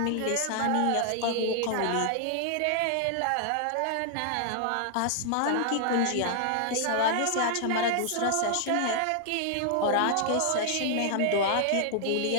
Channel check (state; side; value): different; both; correlation 0.00